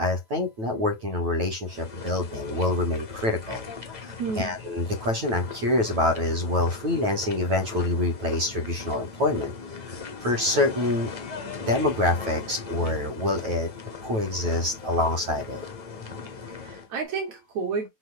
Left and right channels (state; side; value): late; left; 9.1 ms